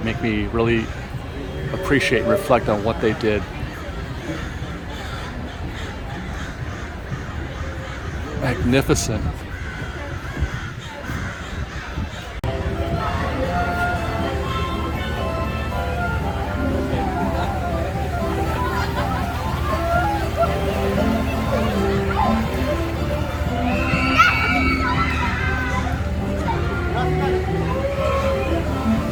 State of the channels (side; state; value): both; identical; correlation 1.00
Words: make me really appreciate and reflect on what they did. Magnificent.